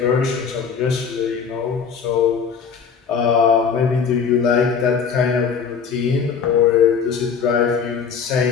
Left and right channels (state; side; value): quieter; right; 6.3 dB